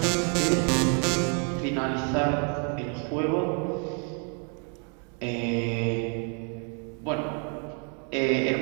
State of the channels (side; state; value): left; quieter; 39.5 dB